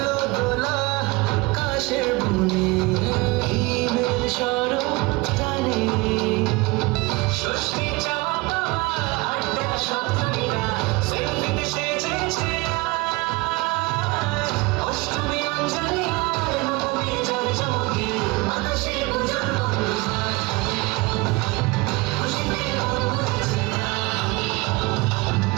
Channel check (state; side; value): quieter; left; 24.0 dB